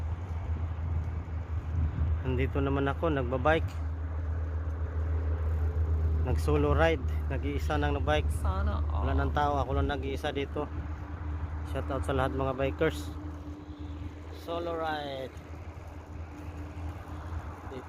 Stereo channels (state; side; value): identical; both; correlation 1.00